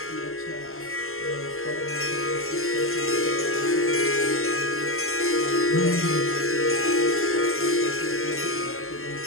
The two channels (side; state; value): right; late; 0.62 ms